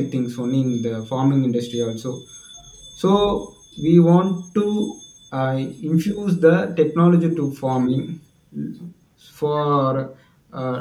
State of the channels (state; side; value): identical; both; correlation 1.00